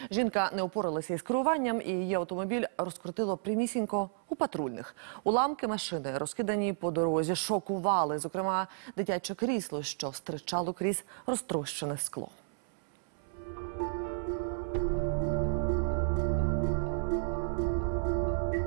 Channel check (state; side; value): silent; left; 56 dB below the other